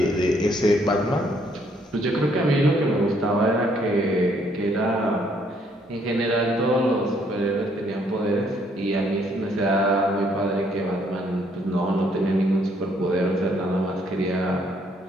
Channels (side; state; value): both; normal; correlation 0.68